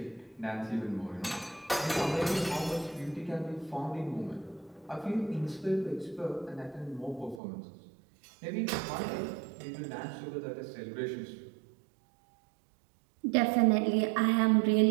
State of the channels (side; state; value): left; drops out; at 7.4 s